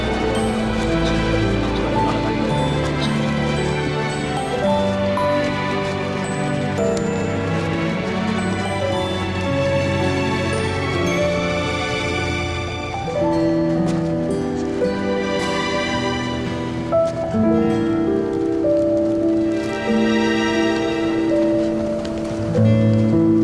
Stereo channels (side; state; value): both; identical; correlation 1.00